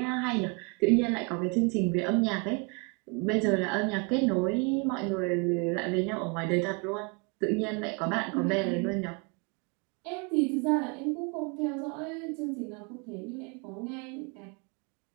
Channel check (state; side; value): quieter; left; 32.8 dB